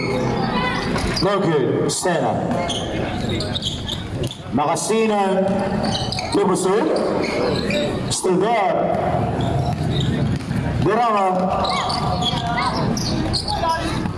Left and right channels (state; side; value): identical; both; correlation 1.00